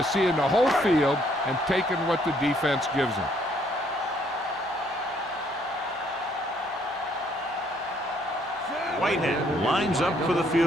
seeing the whole field and taking what the defense gives them. Whitehead lines up for the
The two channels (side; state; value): both; normal; correlation 0.67